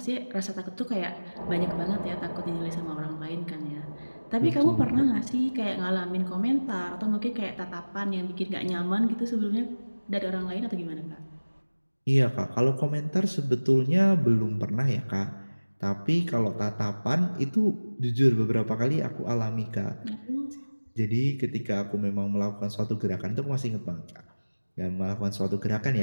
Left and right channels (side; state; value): both; inverted; correlation -1.00